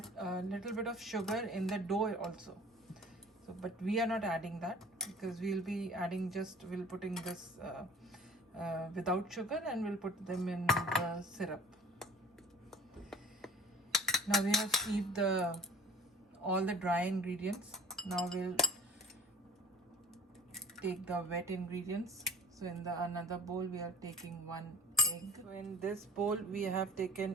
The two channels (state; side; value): normal; both; correlation 0.47